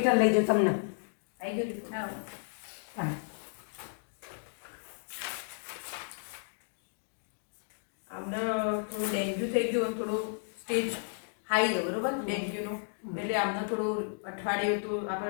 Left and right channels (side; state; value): right; silent; digital silence